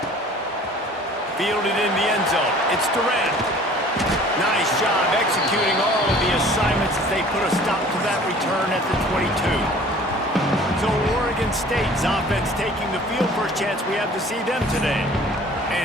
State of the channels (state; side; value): normal; both; correlation 0.49